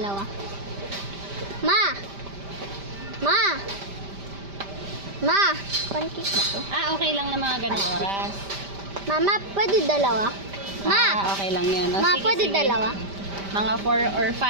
Ma, pancake ba to? Okay lang na mga ganong oras. Mama, pwede dalawa. Okay lang yan. Ma, pwede dalawa. Mga 4 or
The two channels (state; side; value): late; left; 5.1 ms